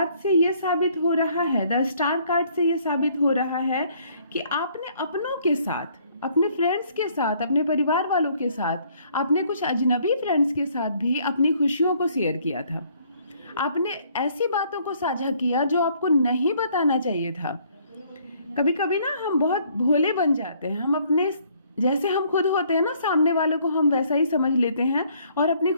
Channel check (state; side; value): inverted; both; correlation -0.63